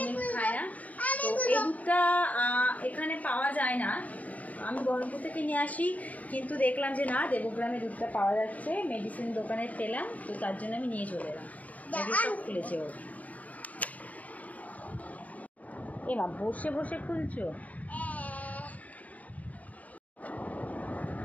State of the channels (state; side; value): late; right; 0.072 ms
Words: মিল্ক খায় না। তো এই দুধটা এখানে পাওয়া যায় না, আমি বহরমপুর থেকে নিয়ে আসি, কিন্তু দেখলাম যে না, দেবগ্রামে দুধটা পাওয়া যাচ্ছে, মেডিসিন দোকানে পেলাম, তো তার জন্য আমি নিয়ে চলে এলাম। সব খুলেছে ও। এমা বসে বসে খুলছো?